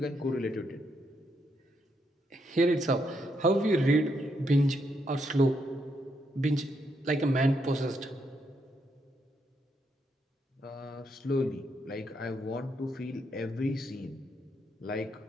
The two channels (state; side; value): normal; both; correlation 0.78